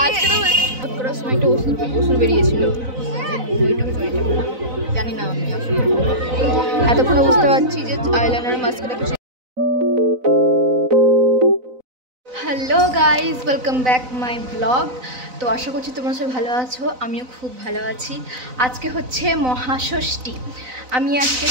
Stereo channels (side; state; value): left; late; 4.0 ms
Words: আজকে তো সময় একটা ওষুধ বেরিয়েছিল, জানি না আমি আসলে এতক্ষণে বুঝতে পারছি যে আইলাইনার মাস্কটা কিছু। Hello guys, welcome back my blog. তো আশা করছি তোমরা সবাই ভালো আছো, আমিও খুব ভালো আছি। আজকে হচ্ছে মহাষষ্ঠী। আমি আজকে